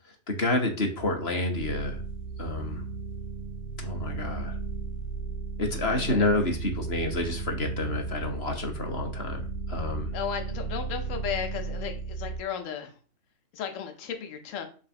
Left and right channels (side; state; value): right; late; 3.0 ms